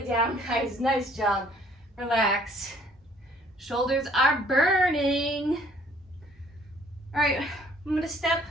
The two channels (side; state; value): both; normal; correlation 0.59